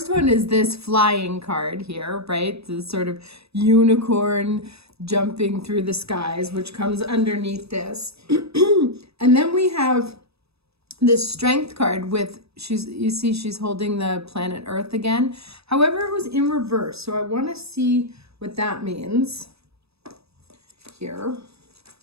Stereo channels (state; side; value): late; left; 0.78 ms